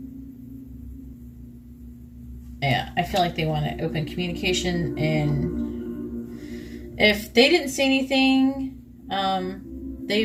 yeah, I feel like they want to open communication, and if they didn't say anything,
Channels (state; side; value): identical; both; correlation 1.00